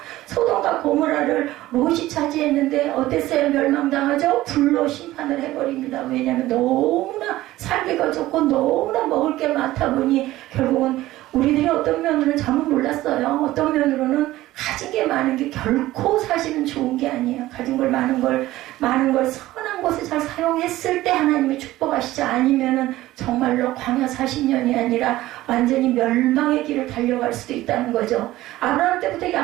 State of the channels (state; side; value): quieter; left; 16.3 dB